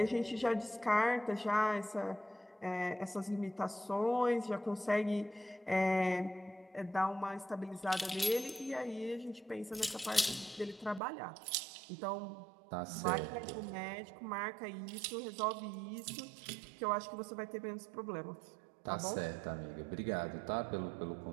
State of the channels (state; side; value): drops out; left; at 11.0 s